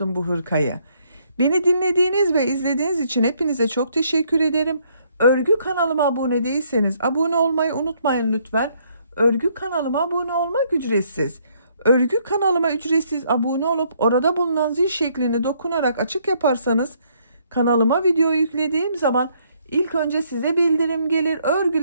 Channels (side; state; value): both; inverted; correlation -0.69